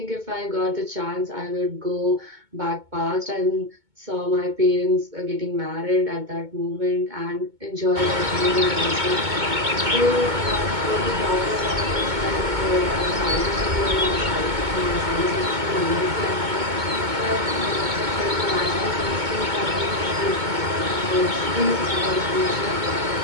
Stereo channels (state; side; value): late; left; 2.2 ms